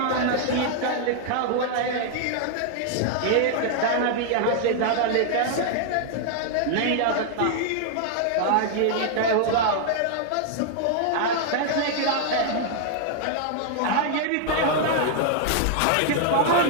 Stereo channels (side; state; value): both; different; correlation 0.00